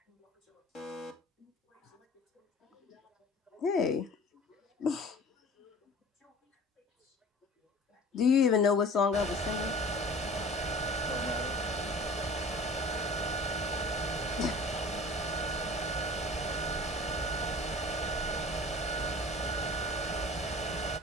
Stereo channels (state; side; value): normal; both; correlation 0.42